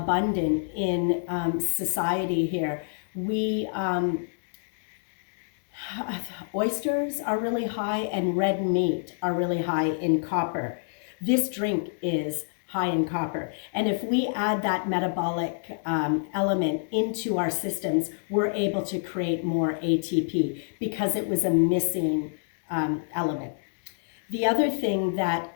in society here. Oysters are really high and red meat are really high in copper. This drink is high in copper. And if we add that metabolic element into our systems, we're able to create more ATP because it was a missing element. The other thing that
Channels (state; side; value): silent; right; digital silence